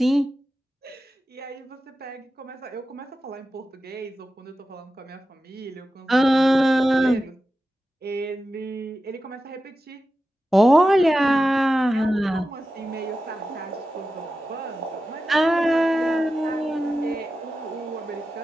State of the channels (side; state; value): both; normal; correlation 0.93